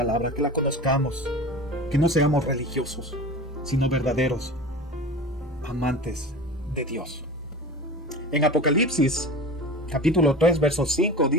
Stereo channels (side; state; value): both; normal; correlation 0.33